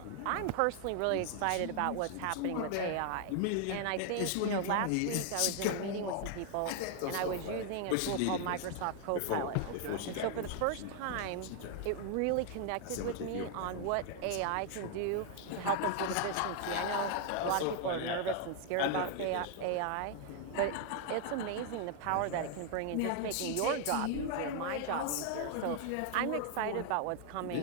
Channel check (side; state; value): both; different; correlation 0.00